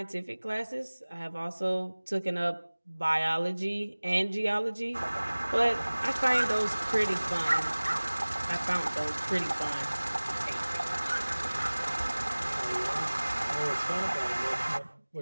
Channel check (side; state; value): both; inverted; correlation -1.00